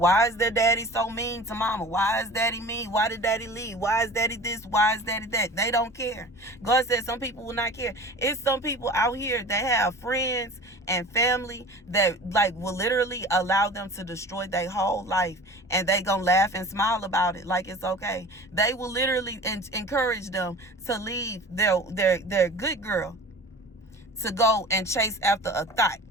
is their daddy so mean to mama? Why is daddy mean? Why did daddy leave? Why is daddy this? Why is daddy that? They don't care. God says some people will not care. It's some people out here that have friends and family that, like, will literally allow them to destroy their whole life, and they gonna laugh and smile about it like it's okay. They will literally encourage them to leave their good girl to go and chase after a thought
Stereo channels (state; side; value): normal; both; correlation 0.39